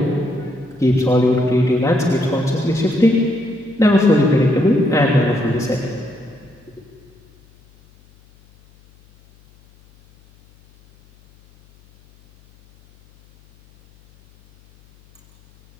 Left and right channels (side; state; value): left; noise; hum, 30 dB below the sound